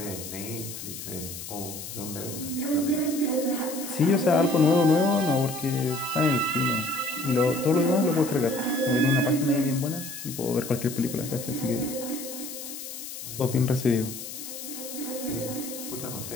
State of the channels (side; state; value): left; noise; hiss, 10 dB below the sound